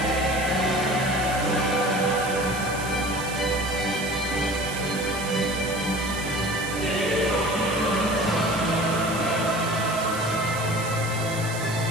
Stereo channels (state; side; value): noise; right; hiss, 11 dB below the sound